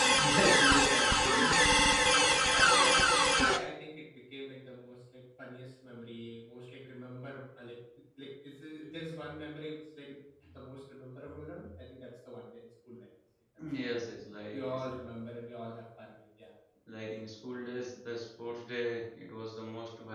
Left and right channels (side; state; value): both; identical; correlation 1.00